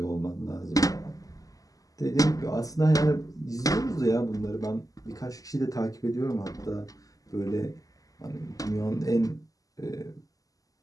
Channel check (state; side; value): late; right; 0.17 ms